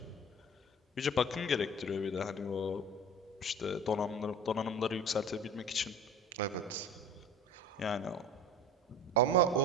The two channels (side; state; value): both; normal; correlation 0.38